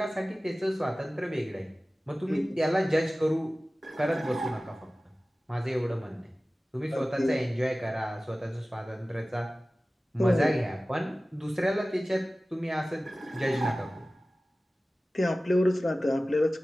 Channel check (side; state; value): both; normal; correlation 0.97